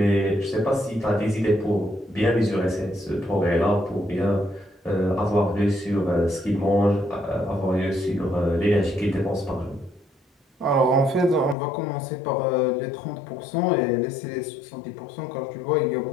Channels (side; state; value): right; drops out; at 11.6 s